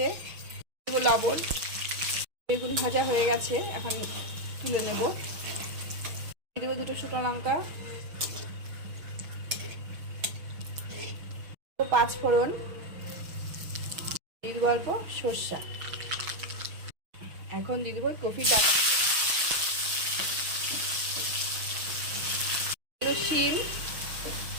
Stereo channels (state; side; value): late; left; 6.3 ms